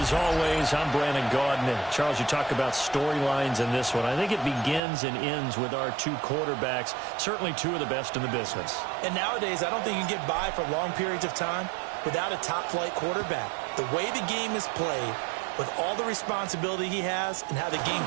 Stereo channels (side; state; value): left; drops out; at 4.8 s